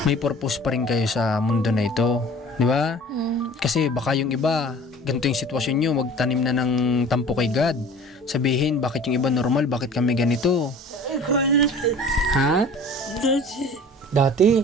may purpose pa rin kayo sa mundo na ito, di ba? Kasi baka yung iba, ganito yung sitwasyon nyo, magtanim na ng tampo kay God. Sabihin, bakit yung iba normal, bakit kami ganito? Ha? Dati?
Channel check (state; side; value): normal; both; correlation 0.44